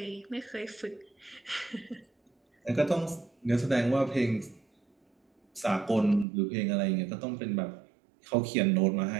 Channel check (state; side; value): drops out; left; at 6.2 s